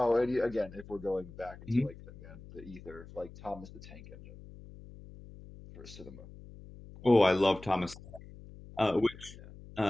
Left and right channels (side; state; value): left; noise; hum, 17 dB below the sound